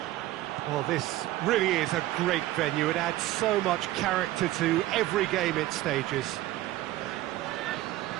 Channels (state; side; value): quieter; left; 15.9 dB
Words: Well, this really is a great venue. It adds so much character to every game it stages.